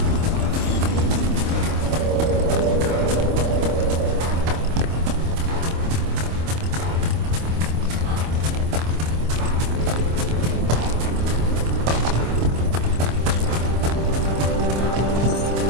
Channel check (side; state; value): left; late; 26 ms